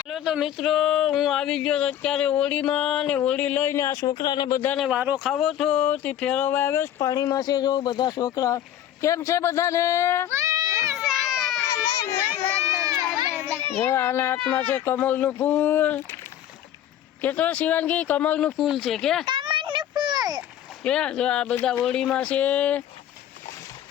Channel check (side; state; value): right; quieter; 11.1 dB